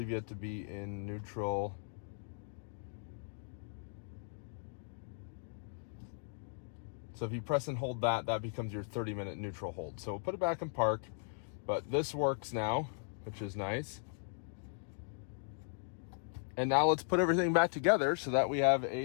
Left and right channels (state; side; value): silent; right; digital silence